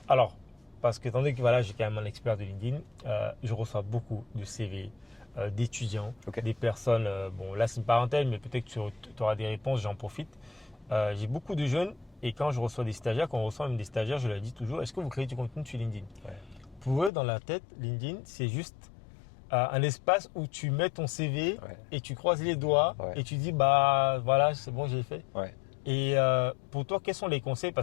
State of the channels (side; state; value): right; drops out; at 17.1 s